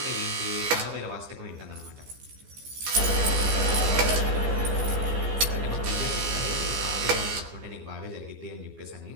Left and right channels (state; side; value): late; left; 15 ms